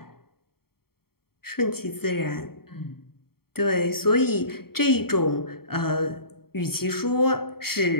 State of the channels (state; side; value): late; right; 0.94 ms